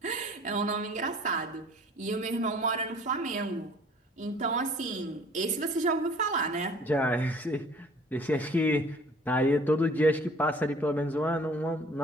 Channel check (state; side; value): normal; both; correlation 0.51